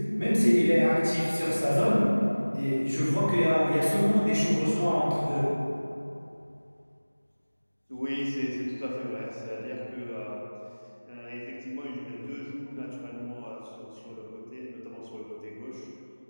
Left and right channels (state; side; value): inverted; both; correlation -1.00